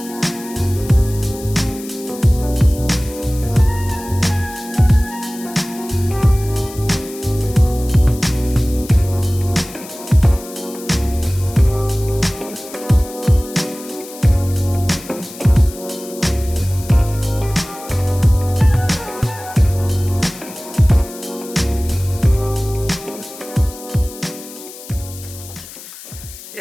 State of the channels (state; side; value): noise; left; hiss, 15 dB below the sound